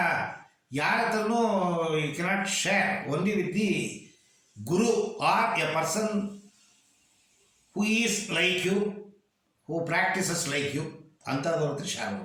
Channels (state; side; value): identical; both; correlation 1.00